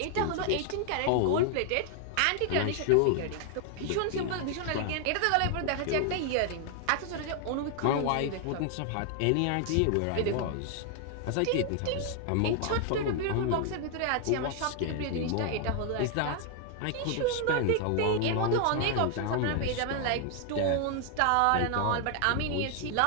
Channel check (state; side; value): different; both; correlation 0.00